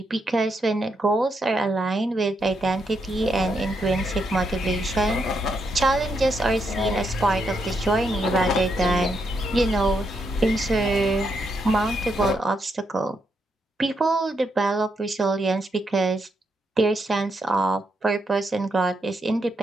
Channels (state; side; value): normal; both; correlation 0.80